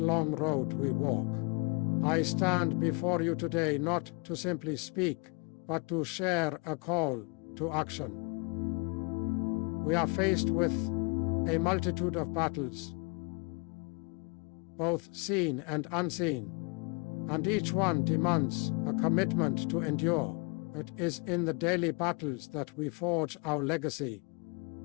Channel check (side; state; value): right; quieter; 32.4 dB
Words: road we walk, I stand before you today not to simply speak, but to share a call to action. We are faced with a multitude of battles, both seen and unseen, and each one demands a commitment to endure. It is in the daily battles that we forge our legacy,